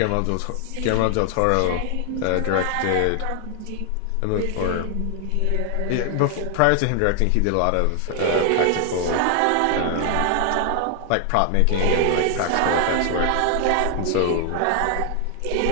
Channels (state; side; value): different; both; correlation 0.00